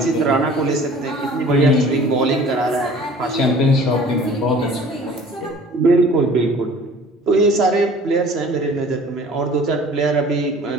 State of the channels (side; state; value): both; normal; correlation 0.48